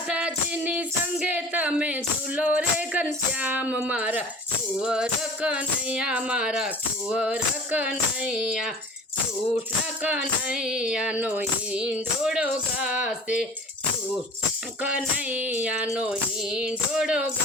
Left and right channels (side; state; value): both; normal; correlation 0.42